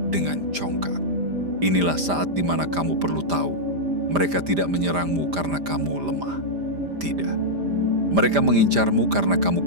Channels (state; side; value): late; left; 5.0 ms